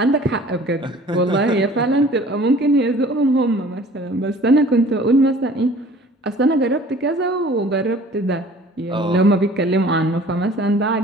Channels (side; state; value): both; normal; correlation 0.49